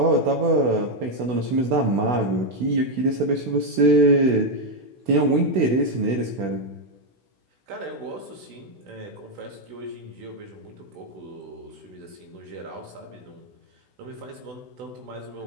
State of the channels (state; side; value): late; left; 16 ms